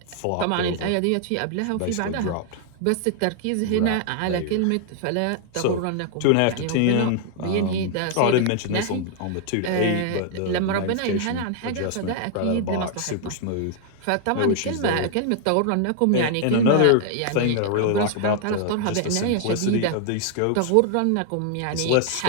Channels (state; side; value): different; both; correlation 0.00